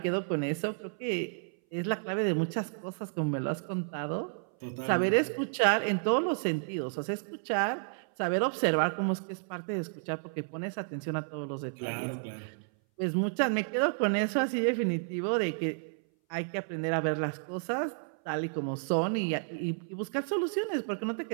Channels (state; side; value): silent; left; 57 dB below the other